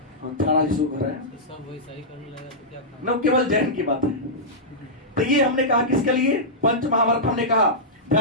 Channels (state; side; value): normal; both; correlation -0.12